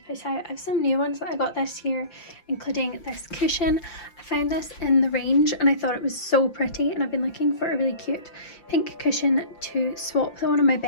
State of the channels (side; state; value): right; late; 5.8 ms